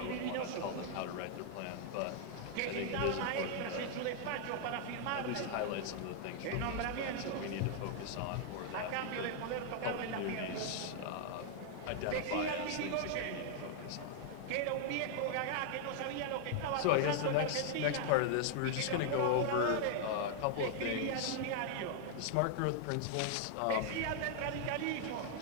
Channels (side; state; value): both; different; correlation 0.00